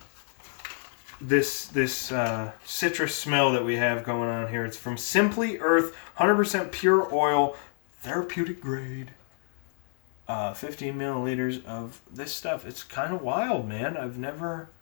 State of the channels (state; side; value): silent; right; 59 dB below the other